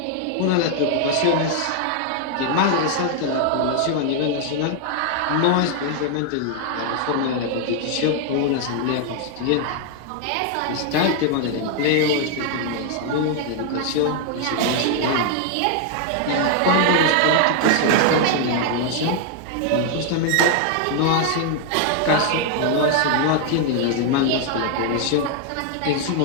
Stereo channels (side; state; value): both; different; correlation 0.00